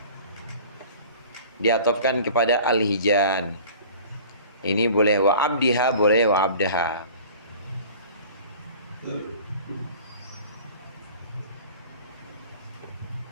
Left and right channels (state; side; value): inverted; both; correlation -0.44